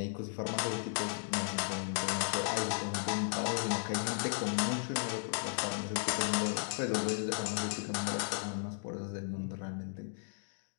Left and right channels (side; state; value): right; silent; digital silence